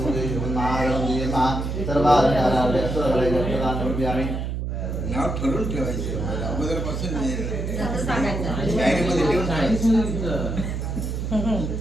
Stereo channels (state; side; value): noise; right; hum, 3 dB below the sound